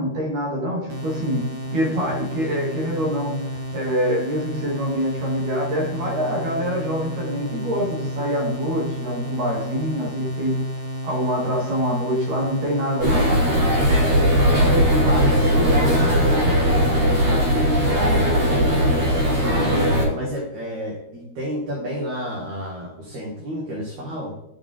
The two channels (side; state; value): left; late; 13 ms